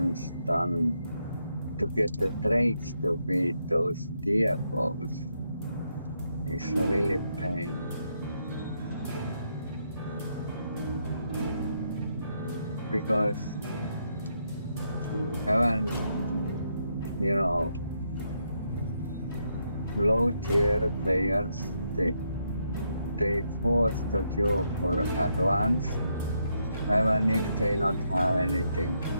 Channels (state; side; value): inverted; both; correlation -0.78